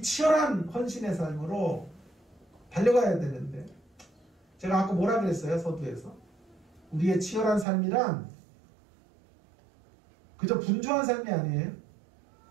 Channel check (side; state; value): left; drops out; at 7.7 s